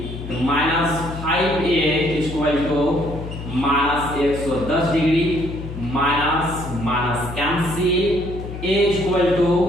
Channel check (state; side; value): noise; left; hum, 9 dB below the sound